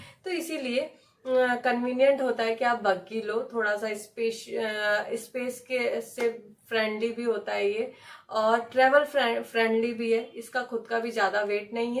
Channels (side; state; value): both; identical; correlation 1.00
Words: तो इसीलिए कन्वीनियंट होता है कि आप बग्गी लो। थोड़ा सा स्पेस के से फ्रेंडली भी होता है ये, और ट्रेवल फ्रेंडली भी है। इसका खुद का भी ज़्यादा वेट नहीं